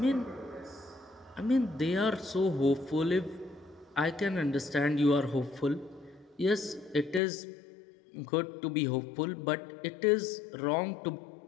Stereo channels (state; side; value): drops out; right; at 7.2 s